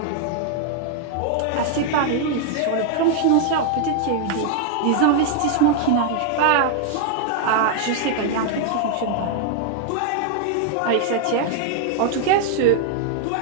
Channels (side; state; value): both; different; correlation 0.00